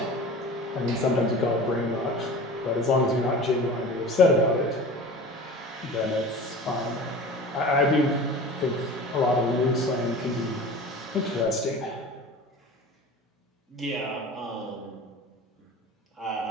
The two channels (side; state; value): both; normal; correlation 0.37